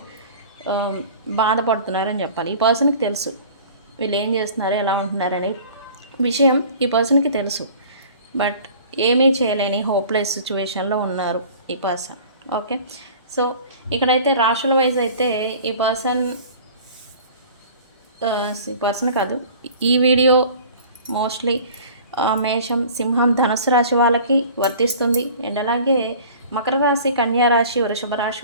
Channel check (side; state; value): both; inverted; correlation -0.45